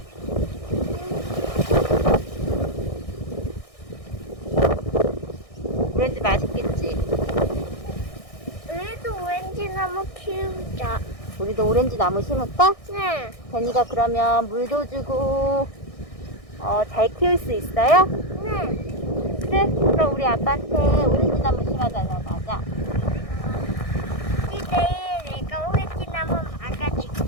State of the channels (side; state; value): right; late; 1.6 ms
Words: 오렌지 맛있겠지? 우리도 오렌지 나무 키우자. 우리도 오렌지 나무 심을까? 네. 제니가 그러면 물도 주고, 잘 키울 수 있어요? 네. 그래? 그럼 우리 아빠한테 오렌지 나무 심어달라고 하자. 내일 내가 오렌지 나무 막아줄